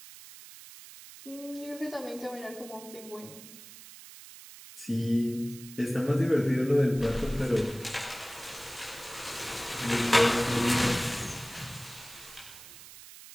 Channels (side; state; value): right; noise; hiss, 17 dB below the sound